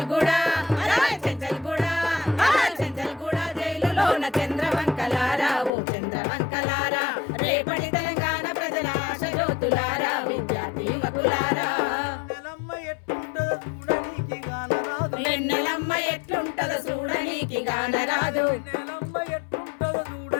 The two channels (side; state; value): right; drops out; at 5.7 s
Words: జైలులోన చంద్రవంకలారా ఓ చంద్రవంకలారా రేపటి తెలంగాణ ప్రజల ఆశ జ్యోతులారా విద్యార్థి యువకులారా వెన్నెలమ్మ ఎట్లుంటదో చూడనీకి గానరాదు